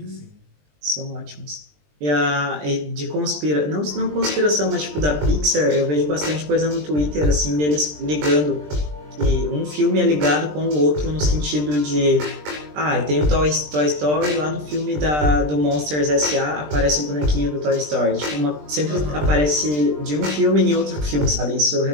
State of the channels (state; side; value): late; left; 20 ms